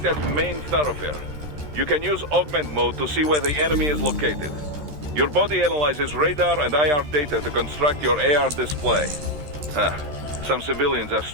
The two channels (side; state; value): left; late; 13 ms